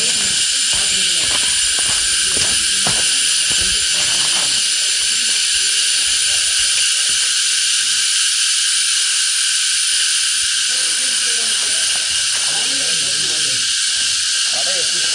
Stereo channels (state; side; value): identical; both; correlation 1.00